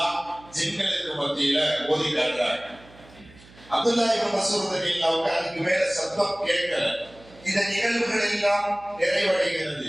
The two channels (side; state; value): right; noise; hum, 24 dB below the sound